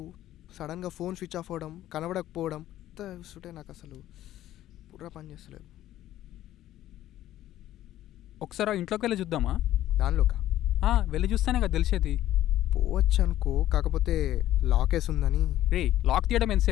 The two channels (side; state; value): right; quieter; 13.5 dB